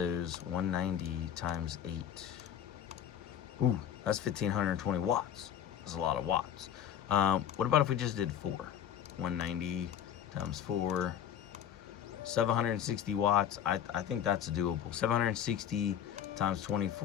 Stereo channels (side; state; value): right; quieter; 9.6 dB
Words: 190 times 8. Ooh, that's 1,520 watts. That's a lot of watts. What about if we just did 4? 190 times 4, 760 watts. I think that's doable. 760 times